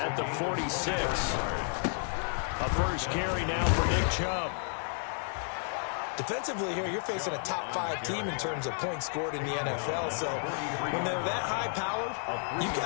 the 46. A first carry now for Nick Chubb. Defensively here, you're facing a top 5 team in terms of points scored in the NFL. So when they're that high-powered, you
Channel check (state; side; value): silent; right; 57 dB below the other